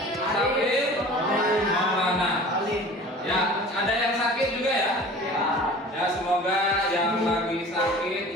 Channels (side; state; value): both; normal; correlation 0.42